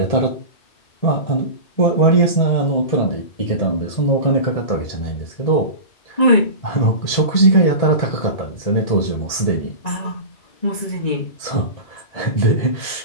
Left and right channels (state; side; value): late; right; 1.8 ms